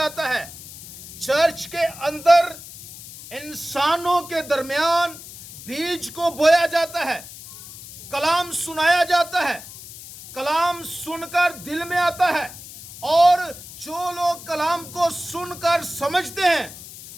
है। चर्च के अंदर इंसानों के दरमियान बीज को बोया जाता है। कलाम सुनाया जाता है, कलाम सुनकर दिल में आता है। और जो लोग कलाम को सुनकर समझते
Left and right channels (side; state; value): left; noise; hiss, 15 dB below the sound